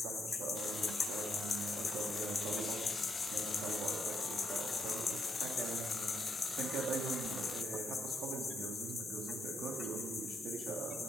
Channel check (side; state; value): both; normal; correlation 0.77